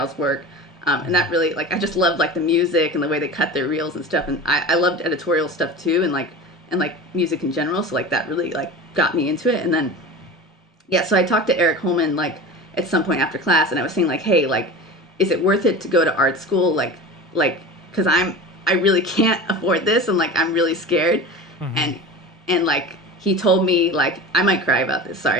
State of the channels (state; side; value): normal; both; correlation 0.33